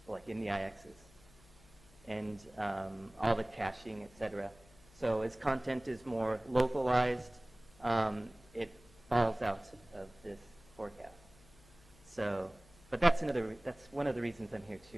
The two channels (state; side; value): noise; left; hum, 25 dB below the sound